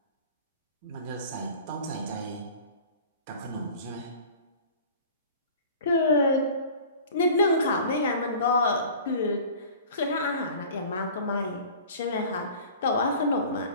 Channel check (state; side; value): inverted; both; correlation -0.43